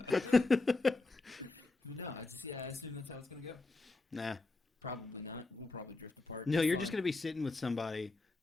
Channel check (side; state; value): right; quieter; 3.3 dB